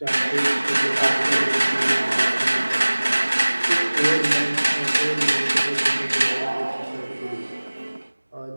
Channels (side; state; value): both; inverted; correlation -1.00